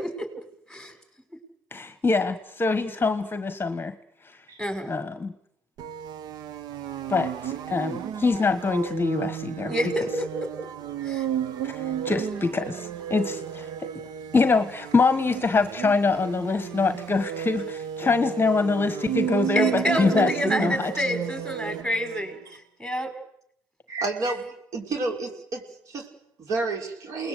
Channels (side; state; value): both; normal; correlation 0.71